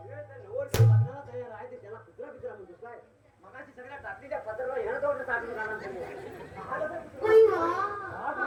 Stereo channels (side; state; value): both; identical; correlation 1.00